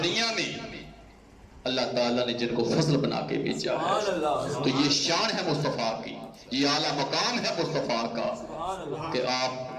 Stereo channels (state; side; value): identical; both; correlation 1.00